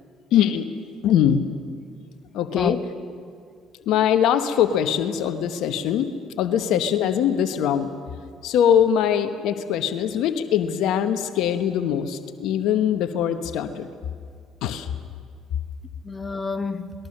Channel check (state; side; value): quieter; right; 8.5 dB